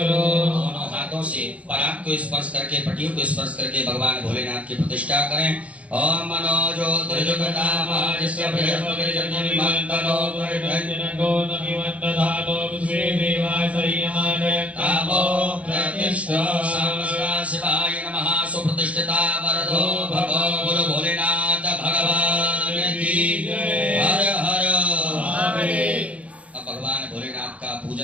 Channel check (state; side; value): late; left; 0.065 ms